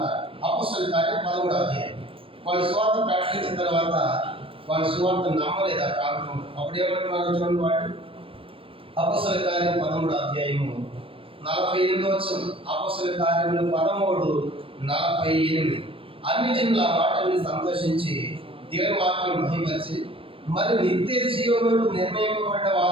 అపోస్తల కార్యం 13వ అధ్యాయం. వాళ్ళు సువార్త ప్రకటించిన తర్వాత వాళ్ళు సువార్త నమ్మలేదు ఆ ప్రాంతం. అప్పుడు ఏమంటున్నారు చూడండి వాళ్ళు. అపోస్తల కార్యం 13వ అధ్యాయము 48వ వచనం. అపోస్తల కార్యములు 13:48. అన్ని జనులు ఆ మాటల్ని సంతోషించి దేవుని వాక్యం మహిమపరిచి మరి నిత్య జీవములకు నిర్ణయింపబడ్డ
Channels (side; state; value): left; late; 0.26 ms